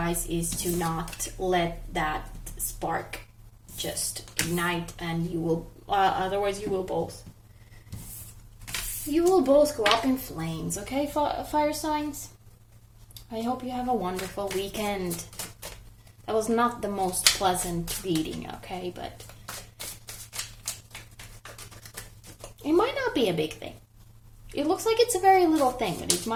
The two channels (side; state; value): both; identical; correlation 1.00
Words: is to not let that spark just ignite, and you will otherwise you will both go up in flames. Okay, fire signs, I hope you have a wonderful weekend. That was not the most pleasant reading, okay, but it might not be a big thing. It looks like it's a very little thing, but it